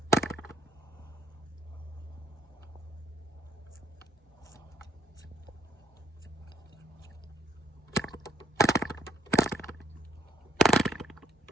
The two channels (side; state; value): both; normal; correlation 0.66